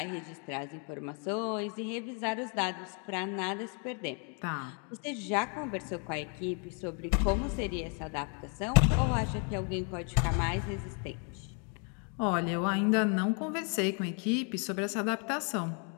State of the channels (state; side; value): quieter; right; 38.7 dB